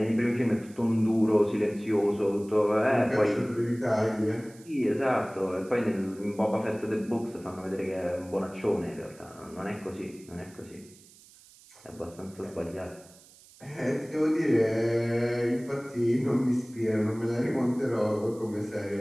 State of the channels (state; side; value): noise; right; hiss, 24 dB below the sound